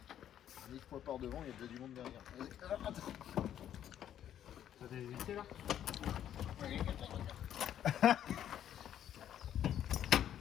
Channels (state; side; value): quieter; right; 10.5 dB